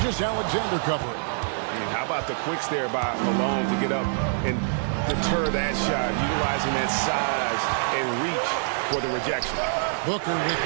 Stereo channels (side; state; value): left; silent; digital silence